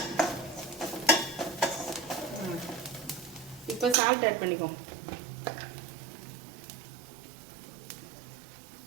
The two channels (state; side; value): drops out; left; at 4.0 s